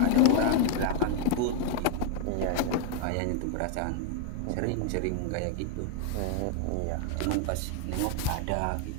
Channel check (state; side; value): different; both; correlation 0.00